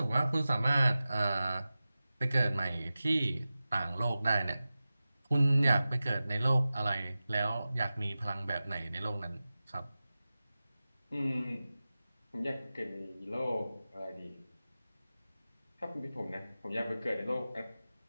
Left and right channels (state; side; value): inverted; both; correlation -0.95